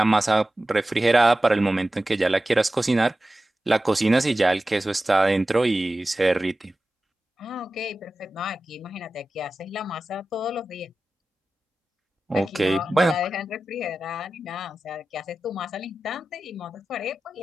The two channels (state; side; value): normal; both; correlation 0.94